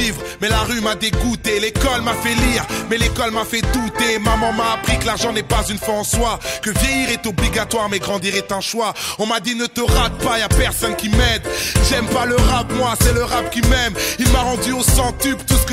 mais la rue m'a dégoûté. L'école m'a fait lire, mais l'école m'a fait douter. Maman m'a appris que l'argent n'est pas une fin en soi, que vieillir est obligatoire, mais grandir est un choix. On m'a dit ne te rate pas, y'a personne qui m'aide. J'aime pas le rap, moi, c'est le rap qui m'aime. Il m'a rendu au centuple tout ce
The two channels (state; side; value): identical; both; correlation 1.00